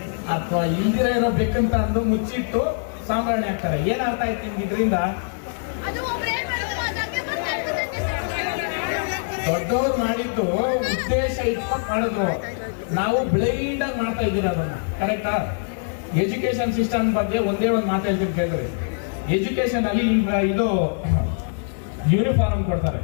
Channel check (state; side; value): silent; right; digital silence